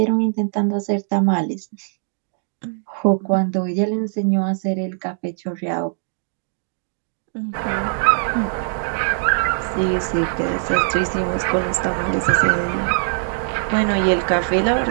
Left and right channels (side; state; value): left; silent; digital silence